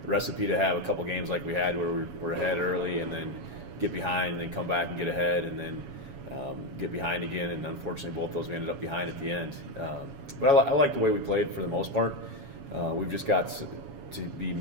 recipe to have a couple games like we had where we're ahead early, and then get behind, and then come back and get ahead, and then get behind again. And unfortunately, both those we ended up behind at the end. But I like the way we played for the most part. We've just got to be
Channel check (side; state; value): left; late; 7.2 ms